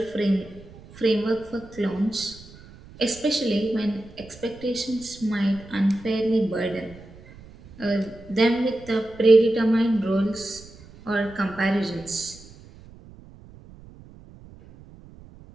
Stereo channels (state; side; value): noise; right; rumble, 21 dB below the sound